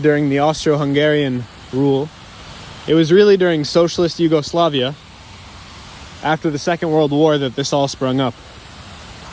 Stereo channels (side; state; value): both; identical; correlation 1.00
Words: during the Austro-Hungarian rule, it was really during socialist Yugoslavia, after the Second World War, that this all sprung up.